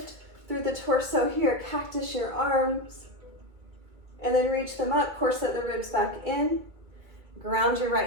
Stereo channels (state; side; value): late; left; 2.3 ms